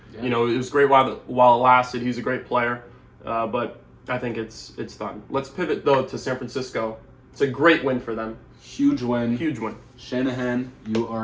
Yeah. It was great while it lasted. He's a great player, but I think it's done. Let's pivot though to San Francisco. It's a great win for them. Huge win. Huge win. Shanahan, you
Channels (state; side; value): identical; both; correlation 1.00